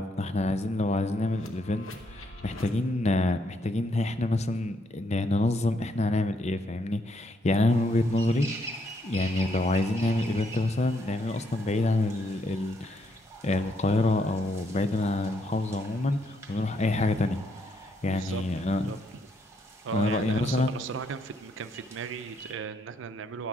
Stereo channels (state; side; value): normal; both; correlation 0.74